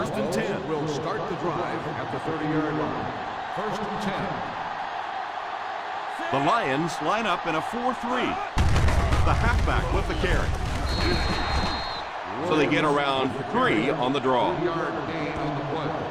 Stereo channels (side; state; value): both; identical; correlation 1.00